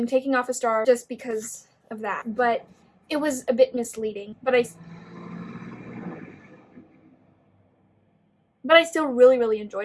taking off a star just because of that, but it was a bit misleading, but I still really, really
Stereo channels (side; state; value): both; identical; correlation 1.00